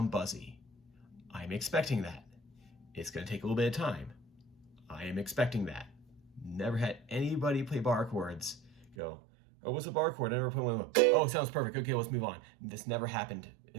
buzzy. I'm expecting that. It's going to take a little bit of time. I am expecting that. Never had anybody play bar chords go, oh, what's a bar chord? I never put one. Oh, it sounds perfect. Okay, let's move on. This never happened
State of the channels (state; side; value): drops out; left; at 9.0 s